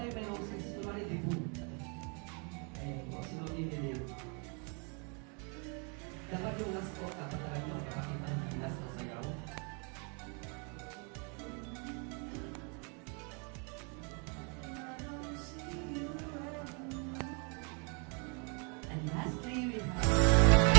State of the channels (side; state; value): left; quieter; 35.9 dB